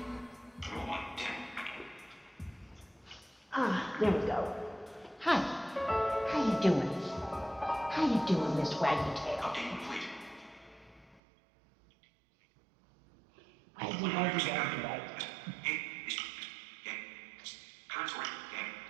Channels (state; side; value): drops out; left; at 11.2 s